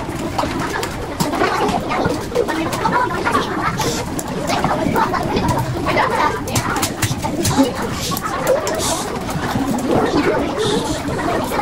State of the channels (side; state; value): both; identical; correlation 1.00